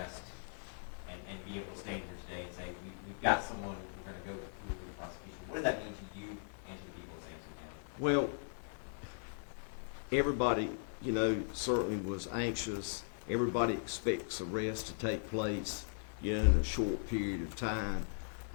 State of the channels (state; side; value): silent; right; 52 dB below the other